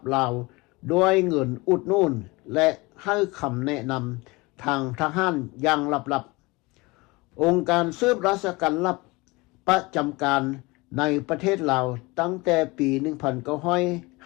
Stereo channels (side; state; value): right; quieter; 23.8 dB